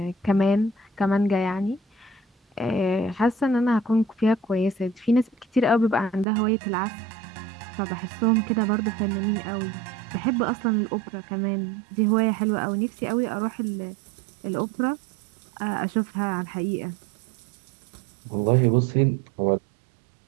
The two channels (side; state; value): left; drops out; at 6.2 s